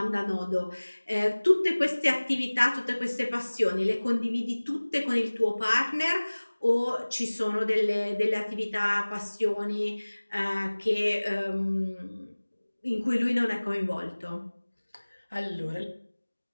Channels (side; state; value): both; inverted; correlation -1.00